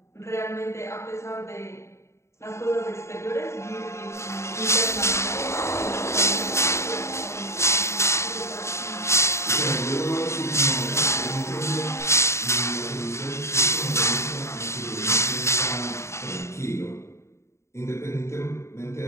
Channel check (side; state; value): right; late; 0.13 ms